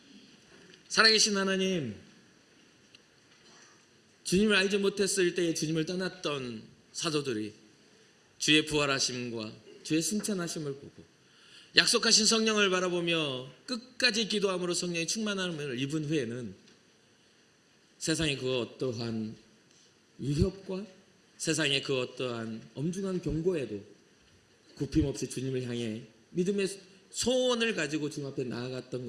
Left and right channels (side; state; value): both; identical; correlation 1.00